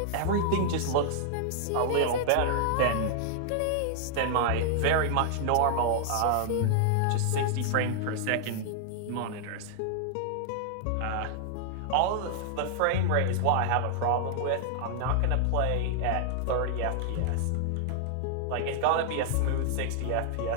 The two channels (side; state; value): both; different; correlation -0.01